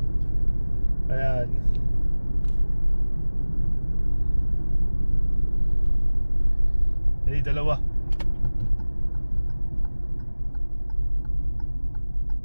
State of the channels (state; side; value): inverted; both; correlation -1.00